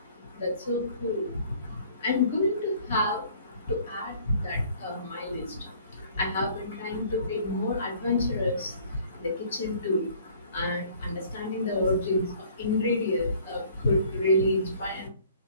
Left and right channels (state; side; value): inverted; both; correlation -0.55